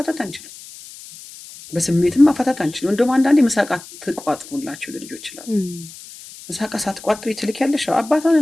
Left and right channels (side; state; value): left; noise; hiss, 17 dB below the sound